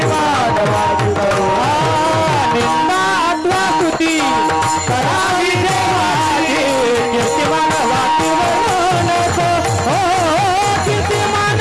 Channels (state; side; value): identical; both; correlation 1.00